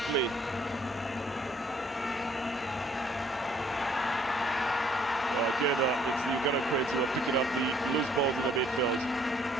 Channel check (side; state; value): both; normal; correlation 0.62